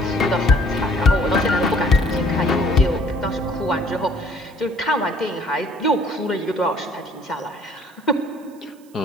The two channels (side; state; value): right; noise; hiss, 29 dB below the sound